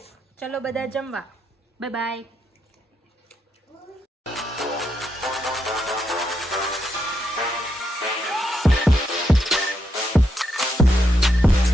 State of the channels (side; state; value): both; normal; correlation 0.80